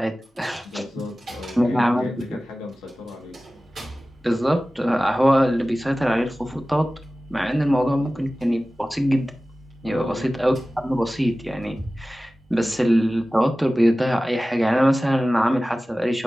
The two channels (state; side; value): normal; both; correlation 0.96